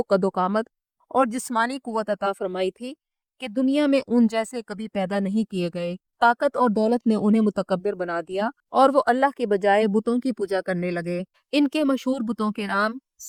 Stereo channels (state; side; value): identical; both; correlation 1.00